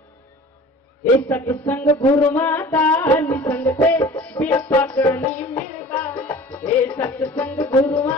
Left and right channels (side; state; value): both; normal; correlation 0.43